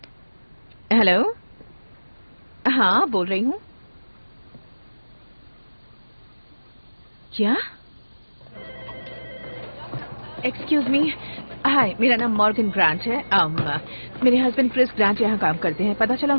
हेलो। हाँ, बोल रही हूँ। क्या? एक्सक्यूज मी, हाय, मेरा नाम मॉर्गन ग्रांट है। मेरे हस्बैंड क्रिस ग्रांट यहाँ काम करते हैं। पता चला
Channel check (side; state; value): both; inverted; correlation -1.00